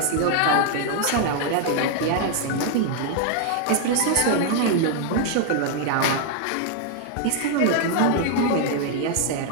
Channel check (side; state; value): both; different; correlation 0.00